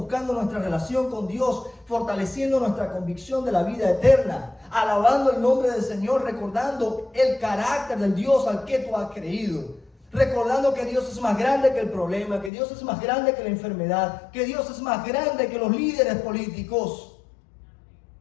nuestra relación con Dios, fortaleciendo nuestra convicción de la vida eterna, alabando el nombre del Señor, recordando el carácter del Dios al que tú has creído. Recordando que Dios es más grande que el problema, que Dios es más grande que la enfermedad, que Dios es más grande que los líderes políticos,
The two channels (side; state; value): right; drops out; at 12.5 s